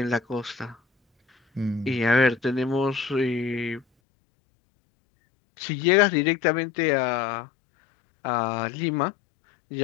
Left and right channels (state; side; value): drops out; right; at 3.9 s